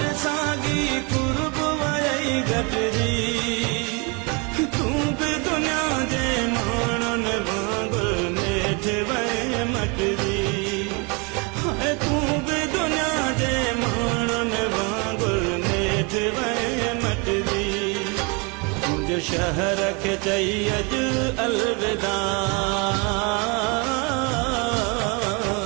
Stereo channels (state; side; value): quieter; left; 31.4 dB